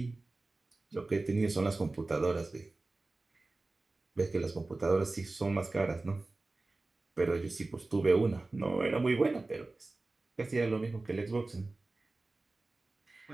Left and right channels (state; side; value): quieter; left; 3.2 dB